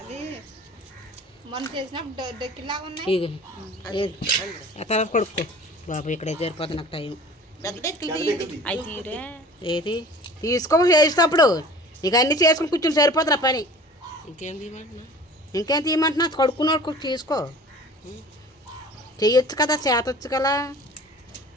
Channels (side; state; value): both; normal; correlation 0.44